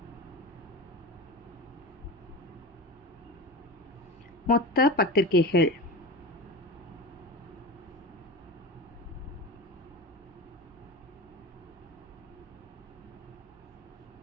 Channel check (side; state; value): both; normal; correlation 0.28